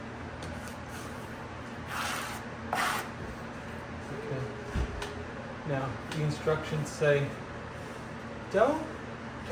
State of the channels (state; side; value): identical; both; correlation 1.00